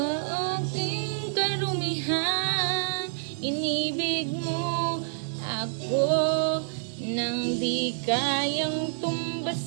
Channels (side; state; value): left; silent; 56 dB below the other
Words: aking karumihan, inibig mo ako nang di kayang